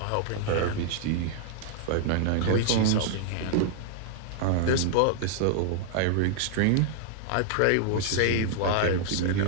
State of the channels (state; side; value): different; both; correlation 0.00